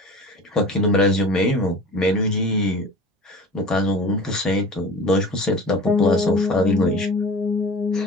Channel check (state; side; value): normal; both; correlation 0.38